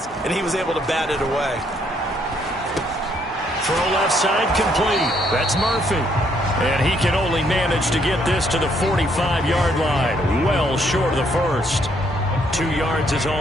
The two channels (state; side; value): normal; both; correlation 0.70